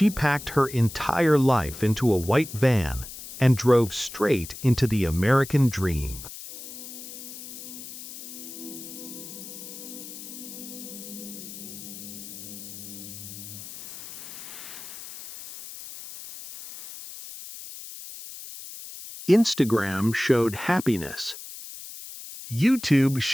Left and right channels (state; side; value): noise; left; hiss, 12 dB below the sound